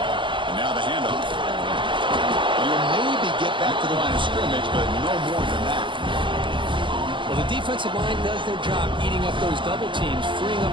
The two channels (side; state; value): left; late; 0.24 ms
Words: And now the handoff. You'll maybe get back to the line of scrimmage, but no more than that. Well, the defensive line does their job eating up those double teams, freeing